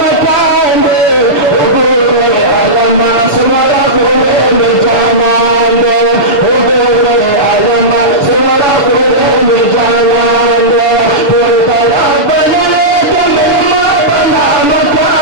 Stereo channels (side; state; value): right; late; 7.0 ms